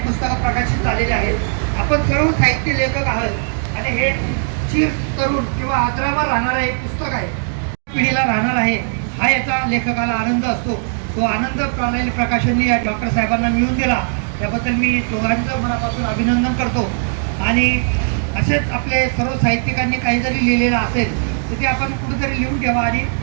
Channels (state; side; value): silent; left; 66 dB below the other